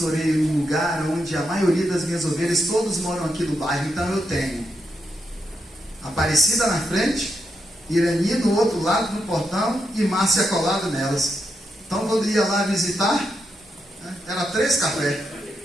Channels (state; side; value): normal; both; correlation 0.83